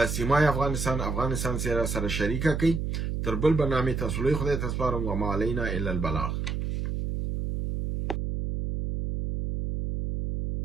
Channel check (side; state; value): right; noise; hum, 2 dB below the sound